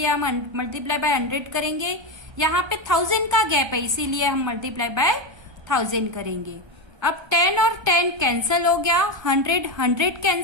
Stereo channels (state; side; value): late; left; 1.3 ms